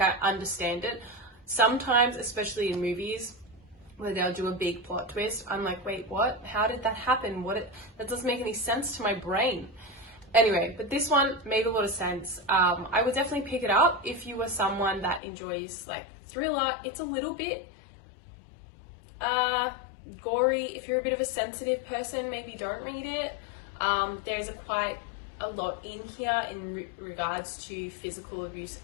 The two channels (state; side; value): drops out; right; at 15.2 s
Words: understand it. Sometimes, especially in movies, where they'll do a big plot twist, I'm like, wait, what? How did that happen? That doesn't make any sense to my brain. Anyway, but this one made a lot of sense. I would definitely pick it up if you were someone that enjoys like thriller. It's a little bit gory. If you're a bit of a sensitive person, maybe don't read it. There's quite a lot in here in regards to physical abuse